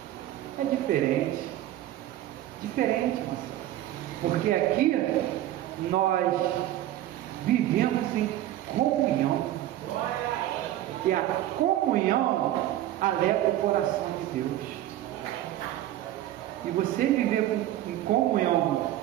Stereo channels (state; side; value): quieter; left; 13.6 dB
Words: é diferente. Diferente, porque aqui nós vivemos em comunhão. E a comunhão alegra o coração de Deus. E você viver em comunhão